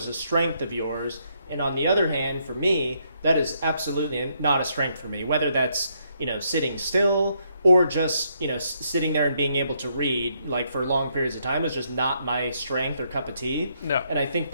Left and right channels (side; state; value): both; inverted; correlation -0.74